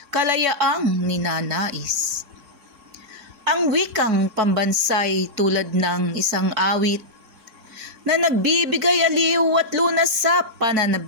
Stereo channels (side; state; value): left; late; 3.6 ms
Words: kalayaang ninanais. Ang wikang pambansay tulad ng isang awit na nagbibigay aliw at lunas sa